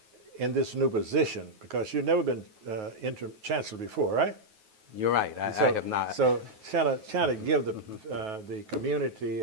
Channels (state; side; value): late; left; 9.3 ms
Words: in this new position, because you've never been Interim Chancellor before, right? You're right. I have not. So kind of give the community